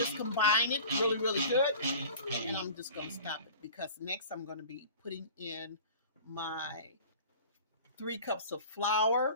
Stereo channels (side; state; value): both; inverted; correlation -0.41